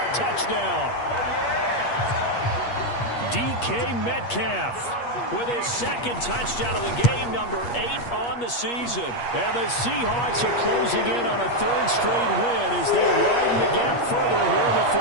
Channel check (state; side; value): late; right; 8.4 ms